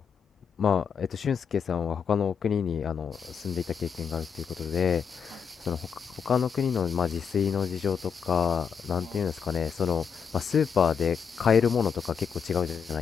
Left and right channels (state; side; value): quieter; right; 6.7 dB